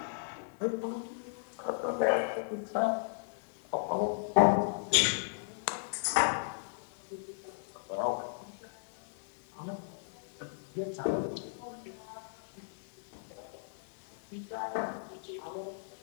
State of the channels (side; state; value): right; silent; 54 dB below the other